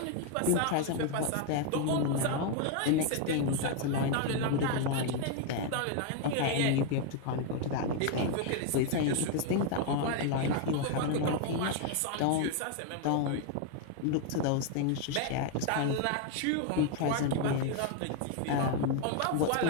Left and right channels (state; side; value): different; both; correlation 0.01